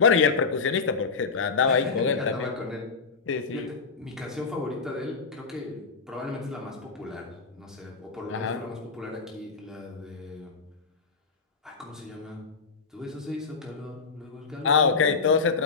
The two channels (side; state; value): right; quieter; 4.9 dB